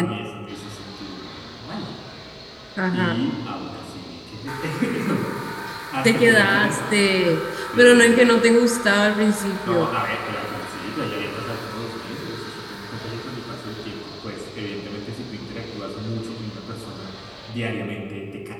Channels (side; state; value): both; identical; correlation 1.00